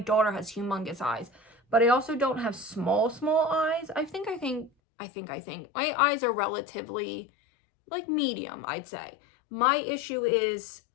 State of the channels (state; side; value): drops out; right; at 4.7 s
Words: has humongous eyes, but I also don't have small eyes. I think my eyes are relatively like medium, I'd say. My issue is